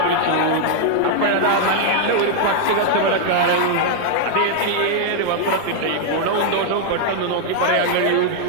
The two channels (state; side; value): different; both; correlation 0.00